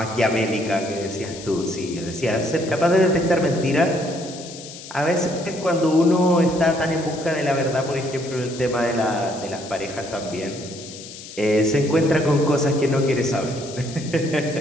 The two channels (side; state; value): left; noise; hiss, 14 dB below the sound